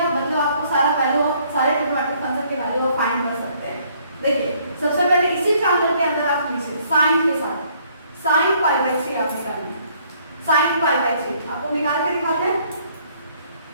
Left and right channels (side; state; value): both; inverted; correlation -0.64